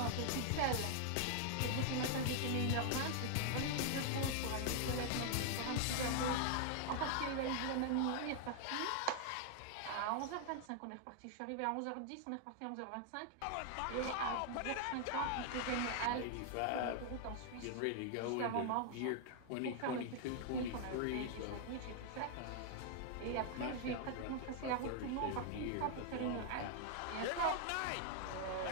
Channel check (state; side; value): different; both; correlation 0.00